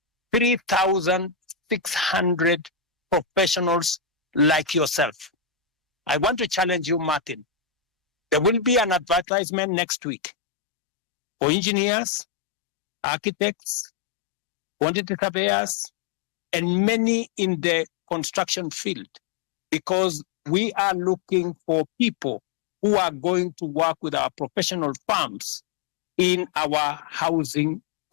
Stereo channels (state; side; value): drops out; right; at 9.2 s